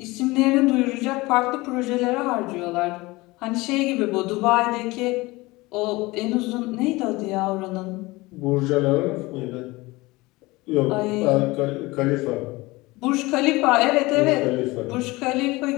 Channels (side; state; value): right; quieter; 21.7 dB